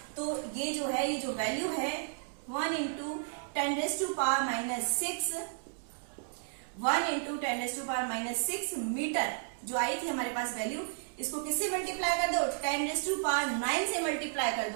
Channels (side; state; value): left; silent; digital silence